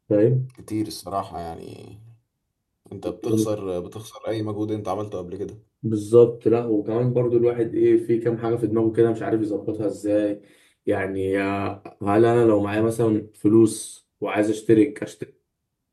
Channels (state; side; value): identical; both; correlation 1.00